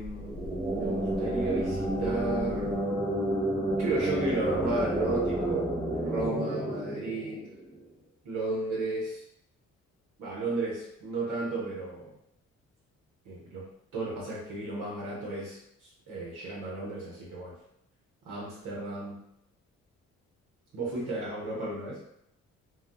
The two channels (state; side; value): normal; both; correlation 0.55